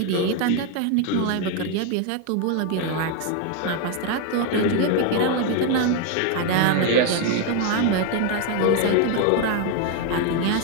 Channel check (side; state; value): both; different; correlation 0.01